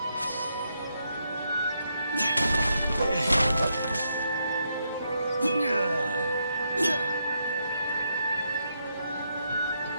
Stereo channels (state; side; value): inverted; both; correlation -0.80